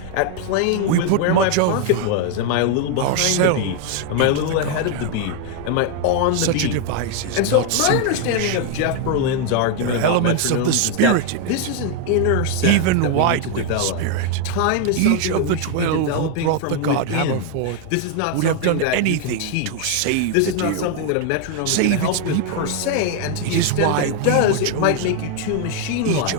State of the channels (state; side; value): different; both; correlation 0.00